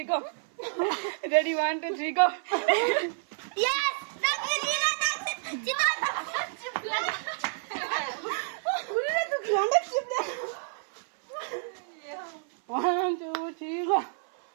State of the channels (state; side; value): silent; left; 58 dB below the other